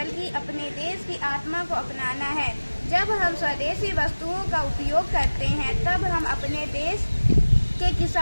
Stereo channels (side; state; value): both; inverted; correlation -1.00